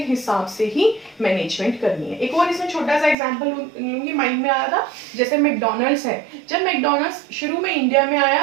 हिसाब से ही मैनेजमेंट करनी है। एक और इसमें छोटा सा एग्जांपल लूंगी, माइंड में आया था, जैसे मैकडॉनल्ड्स है। जब मैकडॉनल्ड्स शुरू में इंडिया में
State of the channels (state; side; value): drops out; left; at 3.2 s